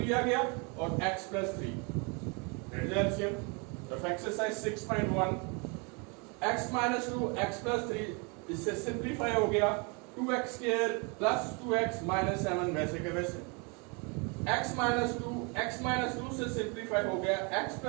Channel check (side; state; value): left; quieter; 32.5 dB